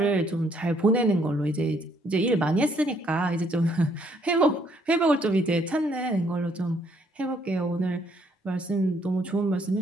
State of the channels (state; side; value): normal; both; correlation 0.67